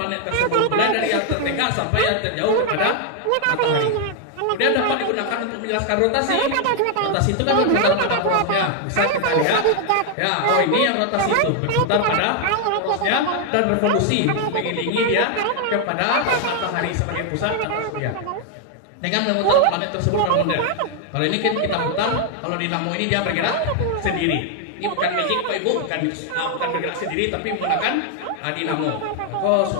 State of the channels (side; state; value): both; different; correlation 0.00